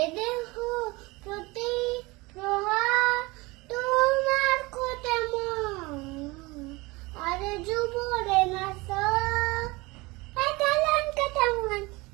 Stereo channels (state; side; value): quieter; left; 23.5 dB